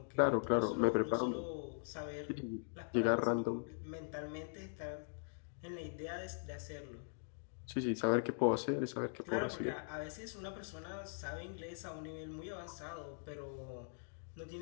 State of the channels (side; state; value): right; silent; digital silence